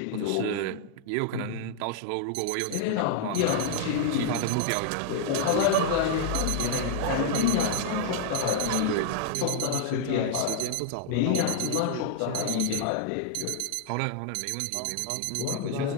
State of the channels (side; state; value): both; different; correlation -0.01